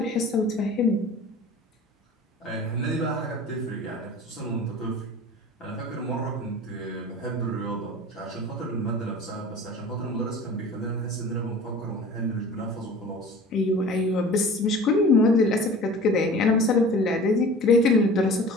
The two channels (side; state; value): both; normal; correlation 0.41